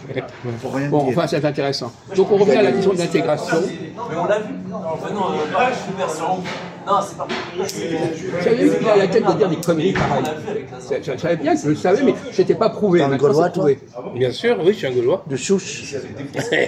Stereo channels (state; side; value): identical; both; correlation 1.00